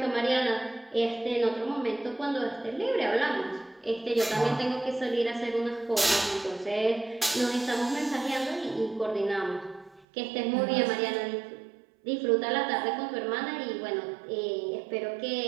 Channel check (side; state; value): left; drops out; at 10.1 s